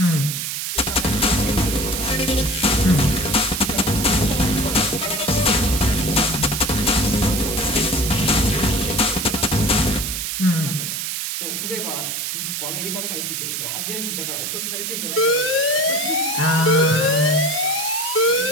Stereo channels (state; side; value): noise; right; hiss, 3 dB below the sound